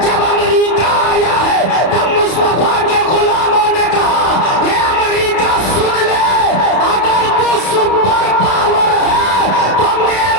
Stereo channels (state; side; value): late; right; 32 ms